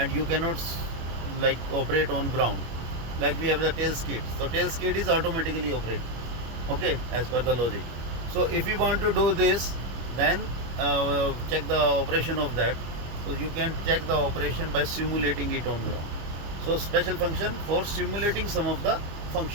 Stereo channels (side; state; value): left; late; 25 ms